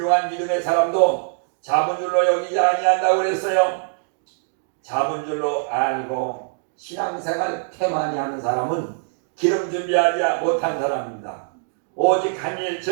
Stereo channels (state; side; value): silent; left; digital silence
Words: 믿음의 사람도 잡은 줄로 여기지 아니한다고 그랬어요. 잡은 줄로 알고 신앙생활 태만히 하는 사람은 기름 준비하지 못한 사람입니다. 오직 한 일,